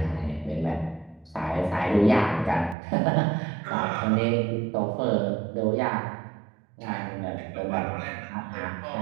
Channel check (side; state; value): left; drops out; at 2.8 s